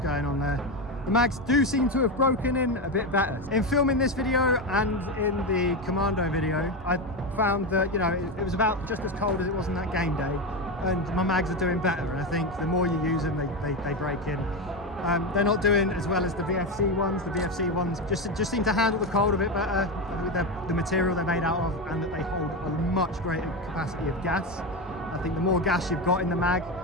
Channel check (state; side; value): normal; both; correlation 0.14